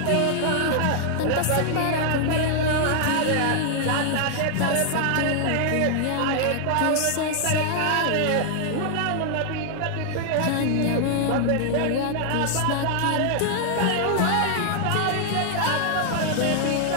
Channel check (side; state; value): both; different; correlation 0.00